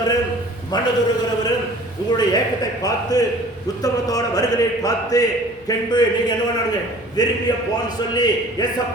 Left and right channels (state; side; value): noise; right; hum, 29 dB below the sound